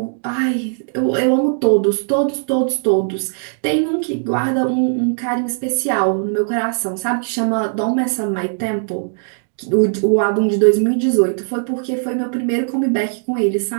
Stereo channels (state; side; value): silent; left; digital silence